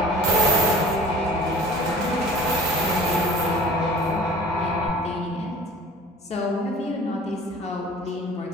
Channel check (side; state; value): both; normal; correlation 0.45